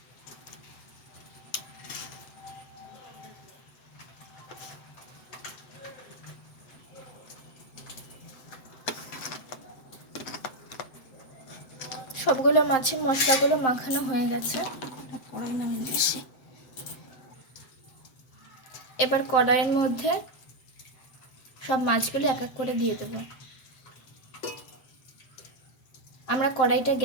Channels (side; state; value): right; late; 7.8 ms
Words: সবগুলো মাছের মশলাগুলো মাখানো হয়ে গেছে। এবার কড়াইয়ের মধ্যে সব মাছগুলো এক এক করে দিয়ে দেব। আমরা কড়াইটা